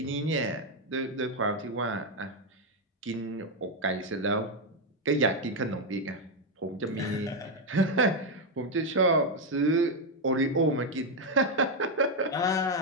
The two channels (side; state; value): both; normal; correlation 0.04